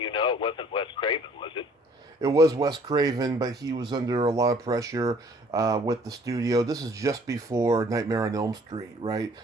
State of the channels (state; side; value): normal; both; correlation 0.57